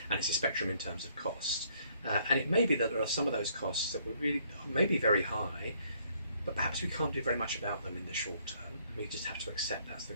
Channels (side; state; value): both; inverted; correlation -0.66